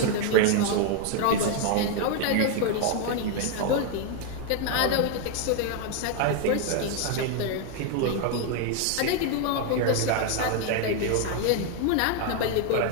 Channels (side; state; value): both; different; correlation 0.01